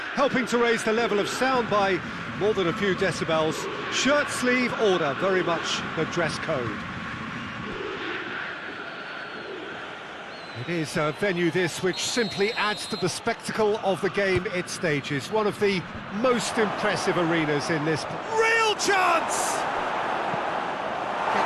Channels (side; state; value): both; identical; correlation 1.00